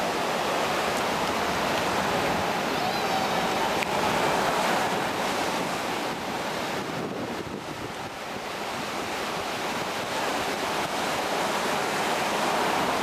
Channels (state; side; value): identical; both; correlation 1.00